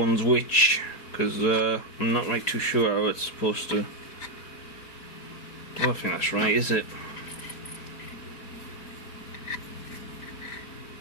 which, because I'm not right too sure how it's supposed to. I don't think that's right, is it?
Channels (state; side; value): late; right; 5.0 ms